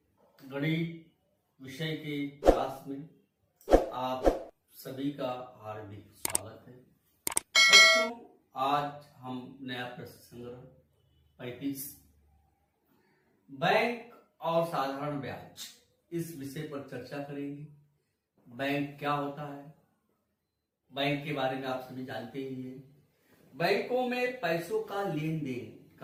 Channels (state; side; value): identical; both; correlation 1.00